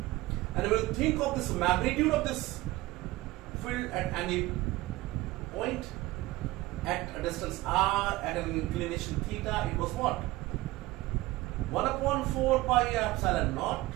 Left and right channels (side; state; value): left; quieter; 18.8 dB